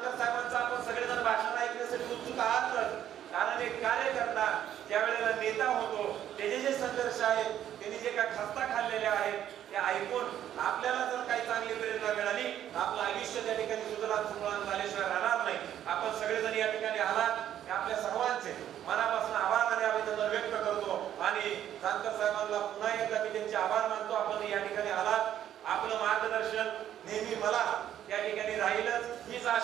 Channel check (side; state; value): left; quieter; 10.9 dB